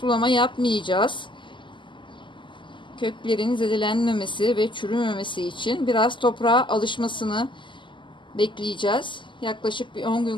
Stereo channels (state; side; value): late; right; 0.24 ms